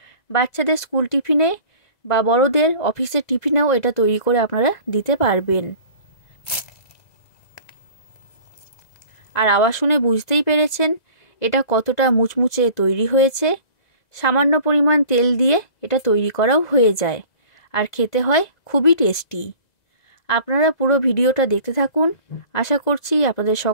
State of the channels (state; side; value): late; right; 2.0 ms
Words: বাচ্চাদের স্কুল টিফিনে বা বড়দের অফিসের টিফিনেও এটা তৈরি করে আপনারা দিতে পারবেন। আর আওয়াজ শুনে বুঝতেই পেরেছেন এটা কতটা মুচমুচে তৈরি হয়েছে। সামান্য পরিমাণ তেল দিয়ে এটা তৈরি করাও হয়ে যায়, আর খেতে হয় খুবই টেস্টি। আপনারা পুরো ভিডিওটা দেখতে থাকুন, আশা করছি আপনাদের